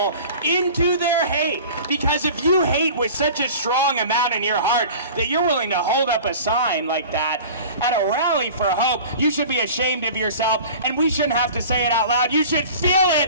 into their hate. Because if you hate with such a strong amount in your heart that you're willing to hold up a sign like that at a rally for hope, you should be ashamed of yourself, and we shouldn't have to say it out loud. You should feel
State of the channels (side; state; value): both; inverted; correlation -0.40